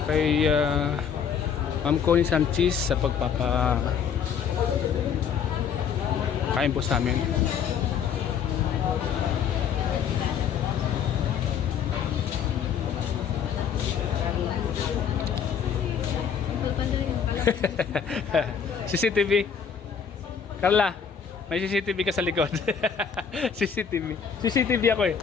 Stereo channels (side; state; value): right; quieter; 7.2 dB